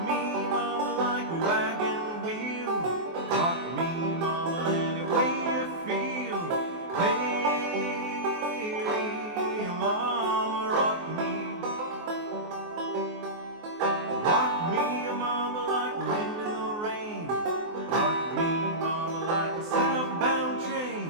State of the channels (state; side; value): late; left; 24 ms